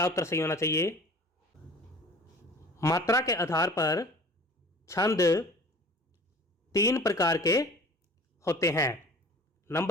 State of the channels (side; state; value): both; normal; correlation 0.44